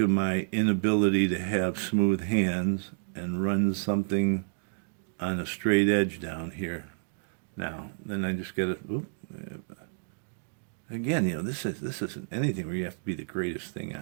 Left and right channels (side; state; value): left; silent; digital silence